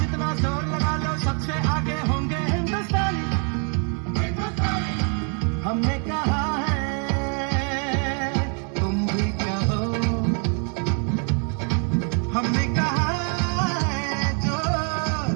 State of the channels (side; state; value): left; quieter; 39.9 dB